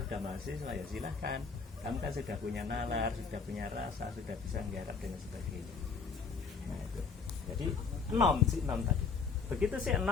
sudah mahasiswa, ya silahkan. Kamu kan sudah punya nalar, sudah punya rasa, sudah bisa menggarap dan sebagainya. Nah itu. Jadi si enom tadi. Begitu si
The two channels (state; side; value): quieter; right; 5.3 dB